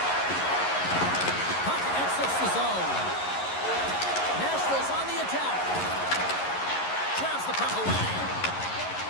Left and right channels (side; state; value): right; late; 11 ms